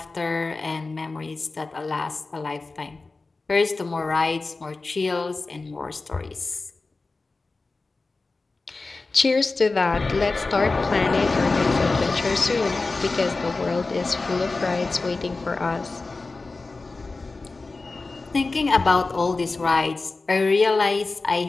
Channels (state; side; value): quieter; right; 3.6 dB